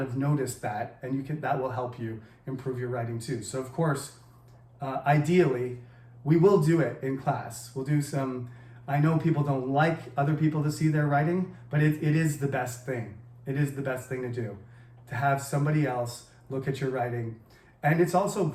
have noticed that, and that will help you improve your writing too. So of course, ideally, we will do it in class. We'll do some. I know people don't like other people to see their writing, but it is the best thing. It is the best thing to do, to have somebody else look at your writing. And it's also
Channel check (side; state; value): both; identical; correlation 1.00